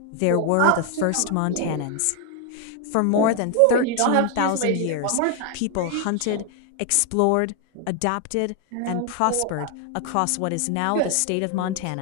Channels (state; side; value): different; both; correlation 0.00